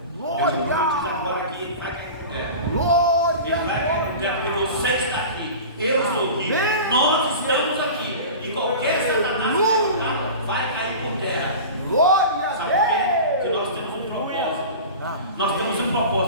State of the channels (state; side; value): inverted; both; correlation -0.33